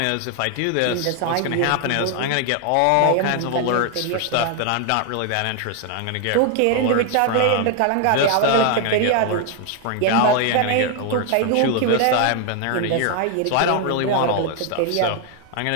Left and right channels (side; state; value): both; different; correlation 0.00